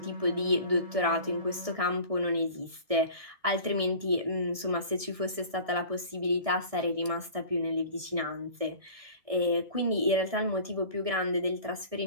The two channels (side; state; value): left; late; 1.6 ms